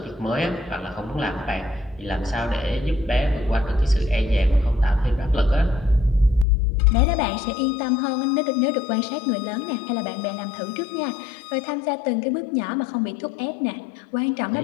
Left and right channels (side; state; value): right; drops out; at 6.5 s